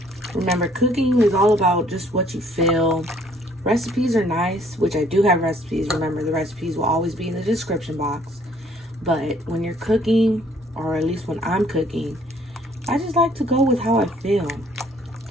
Remember, cooking is all about just what you feel. Recipes are nice, which I do have recipes. Remember, the recipes will always be in the description box. But when you're cooking, or at least when I'm cooking, I just like to go with how I feel.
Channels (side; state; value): both; normal; correlation 0.61